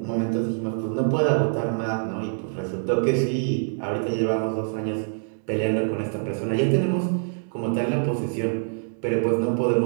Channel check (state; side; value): silent; left; digital silence